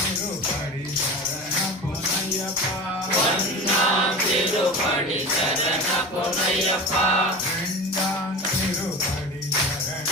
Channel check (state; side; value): normal; both; correlation 0.31